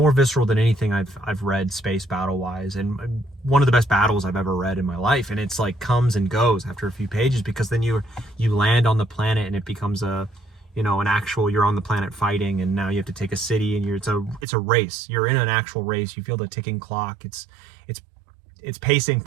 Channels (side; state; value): left; drops out; at 14.5 s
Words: visceral than anything I've read space battle wise, and one of the best battles I've ever read in my life. And it's like comes and goes after a few pages, because then you land on the planet and it becomes an actual, you're on the planet fighting, and now you have to take a city, and it's a race. You're in an actual race. You feel the ticking clock. It's pacing